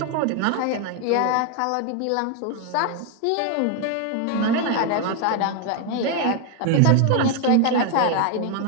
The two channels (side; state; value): both; different; correlation 0.01